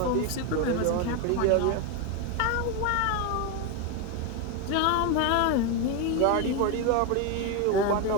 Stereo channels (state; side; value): different; both; correlation 0.02